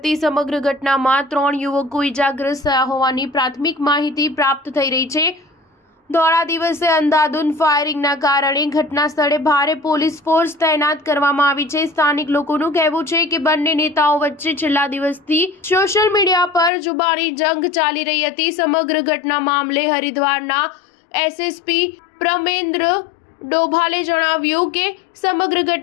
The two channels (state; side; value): drops out; right; at 16.7 s